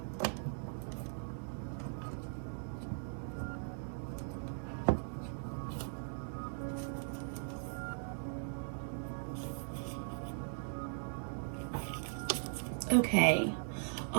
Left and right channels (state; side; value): silent; left; digital silence